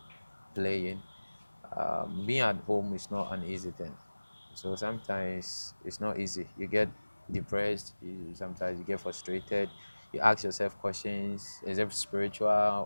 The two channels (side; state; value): both; inverted; correlation -1.00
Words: playing, being at home is not an easy thing. So sometimes it's not easy. You get depressed, sometimes you get frustrated, you ask yourself questions, is it